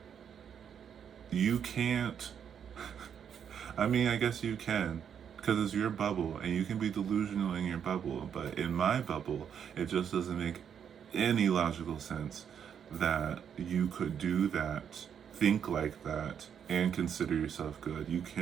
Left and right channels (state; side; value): quieter; left; 8.1 dB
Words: you can't, I mean, I guess you can, because it's your bubble and you can be delusional in your bubble. But in my bubble, it just doesn't make any logical sense that you could do that, think like that, and consider yourself good. You